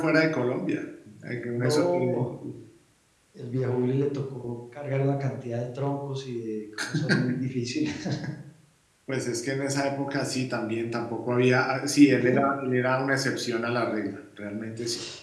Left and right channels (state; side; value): identical; both; correlation 1.00